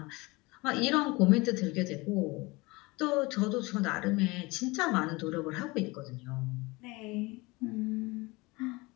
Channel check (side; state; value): right; quieter; 23.9 dB